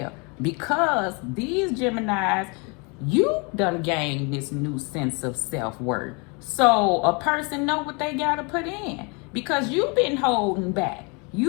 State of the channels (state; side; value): quieter; right; 31.2 dB